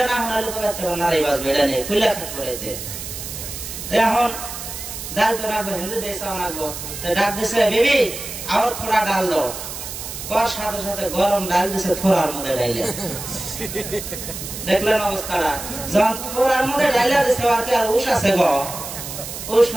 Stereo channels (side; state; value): right; noise; hiss, 8 dB below the sound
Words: না শোনালে তো বাচ্চা নারী বাজবে এটা নেই খুলে থাকবো এতে এখন ডাল তো রাখবো হিন্দি দিয়ে চাওয়া লাগবো ডাক দিছে বিবি আর থোড়া ডাল দো কর সাথে সাথে গরম ডাল দিছে থোড়ার মধ্যে ডাইলে দেখলেন অবস্থাটা যখন থোড়ার মধ্যে ডাইলে দিছে আর কি আর উস আছে গো উস